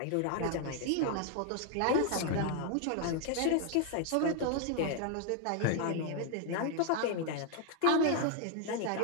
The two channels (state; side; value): different; both; correlation 0.00